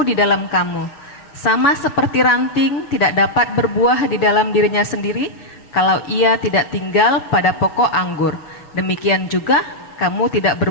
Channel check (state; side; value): late; right; 6.9 ms